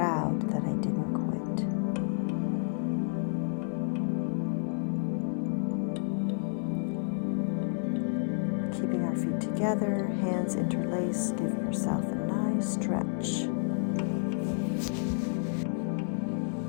that I didn't quit. Keeping our feet together, hands interlaced, give yourself a nice stretch.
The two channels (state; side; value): silent; right; digital silence